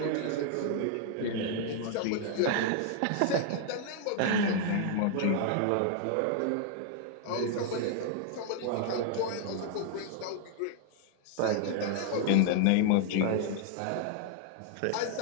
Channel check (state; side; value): different; both; correlation 0.00